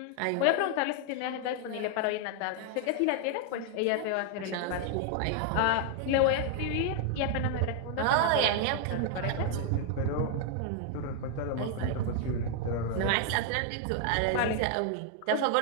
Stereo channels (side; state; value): both; different; correlation 0.00